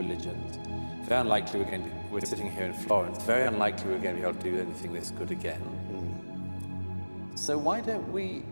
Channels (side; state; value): both; inverted; correlation -1.00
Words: Very unlikely we're sitting here in Florence. Very unlikely we're going to be able to do anything this good again. So why don't we